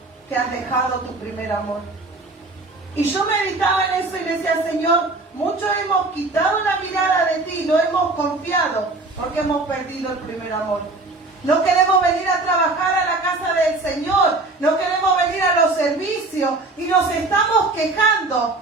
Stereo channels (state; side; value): quieter; left; 3.2 dB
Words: que has dejado tu primer amor. Y yo meditaba en eso y decía, Señor, muchos hemos quitado la mirada de ti, no hemos confiado porque hemos perdido el primer amor. No queremos venir a trabajar a la casa del Señor. No queremos venir a los servicios. Y nos estamos quejando